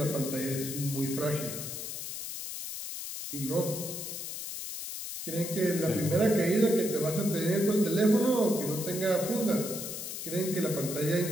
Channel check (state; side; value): noise; left; hiss, 7 dB below the sound